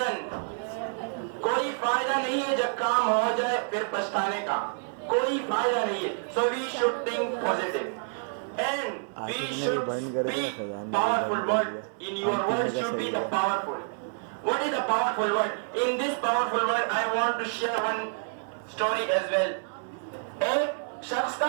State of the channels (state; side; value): silent; left; digital silence